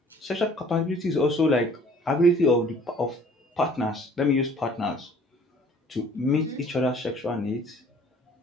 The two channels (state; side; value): normal; both; correlation 0.54